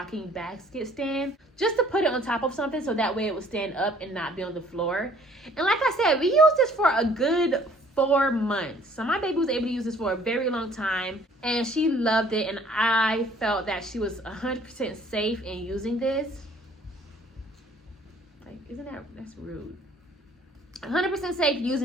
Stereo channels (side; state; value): both; normal; correlation 0.57